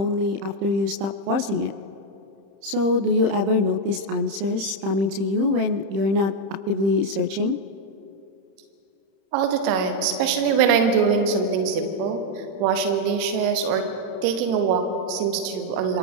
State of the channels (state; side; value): late; left; 30 ms